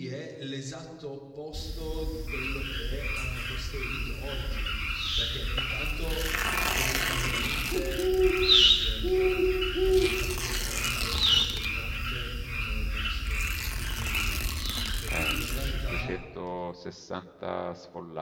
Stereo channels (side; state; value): both; identical; correlation 1.00